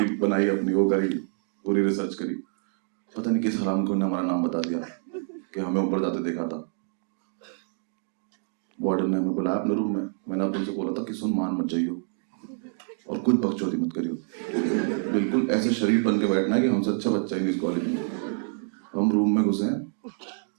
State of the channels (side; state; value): left; silent; 58 dB below the other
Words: बनाई अपनी, वो करी, पूरी रिसर्च करी। पता नहीं किस हराम को ने हमारा नाम बता दिया कि हमें ऊपर जाते देखा था। वार्डन ने हमें बुलाया अपने रूम में। मैंने तुमसे बोला था कि सुन मान मत जाइयो और कुछ बकचोदी मत करियो, बिल्कुल ऐसे शरीफ बन के बैठना है कि हमसे अच्छा बच्चा ही नहीं इस कॉलेज में। हम रूम में घुसे,